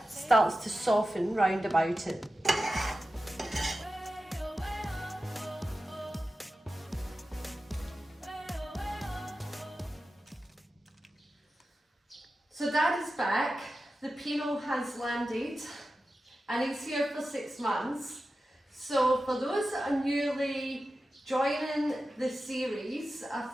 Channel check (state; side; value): normal; both; correlation 0.93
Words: starts to soften round about it. So Dad is back, the Pino has landed, and he's here for 6 months. So for those that are newly joining the series, I